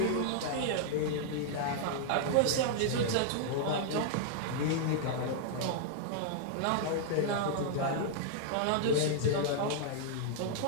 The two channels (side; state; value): both; different; correlation -0.01